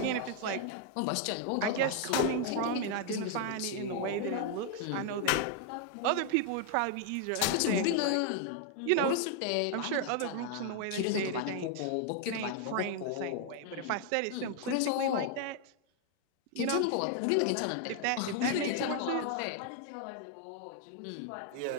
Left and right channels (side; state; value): both; different; correlation 0.00